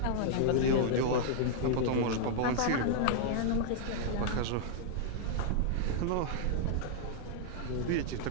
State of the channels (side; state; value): both; different; correlation -0.01